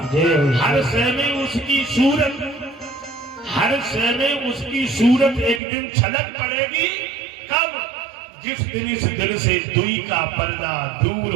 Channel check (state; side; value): drops out; left; at 5.6 s